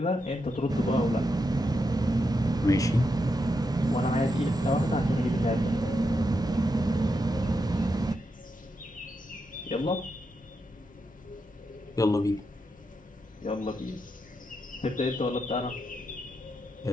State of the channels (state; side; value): normal; both; correlation 0.84